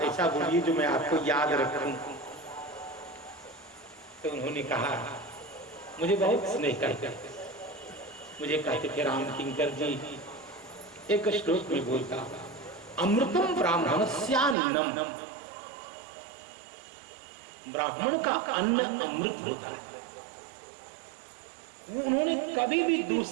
ऐसा बोलिए जो मैं आपको याद रखूं। तो उन्होंने कहा, मुझे बहुत स्नेह करते, मुझे कहते थे, राम किंकर जी एक श्लोक में बोलता, अमृतम ब्राह्मणस्यान्नम, ब्राह्मण का अन्न अमृत होता है। उन्होंने कभी भी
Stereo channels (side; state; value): left; drops out; at 14.6 s